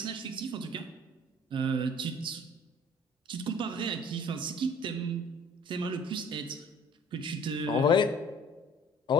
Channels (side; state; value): both; normal; correlation 0.51